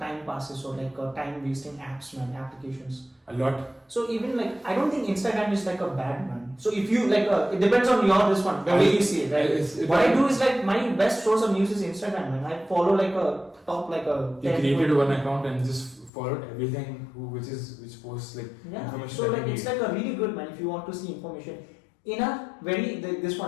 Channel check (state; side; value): drops out; right; at 16.1 s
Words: passes or like a time wasting apps, man, applications. A lot. So even like I don't think Instagram is like a bad, man. So if you like it depends on your this one, the way you see it, right? What I do is like my best source of news is Instagram, man. I follow like a top like a. You created one account and just followed everything which posts like information. So like it's like a really good, man, if you want to see information in a very this